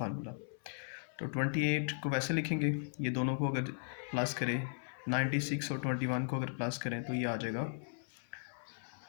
तो 28 को वैसे लिखेंगे, ये दोनों को अगर प्लस करें, 96 और 21 को अगर प्लस करें तो ये आ जाएगा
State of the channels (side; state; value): right; silent; 53 dB below the other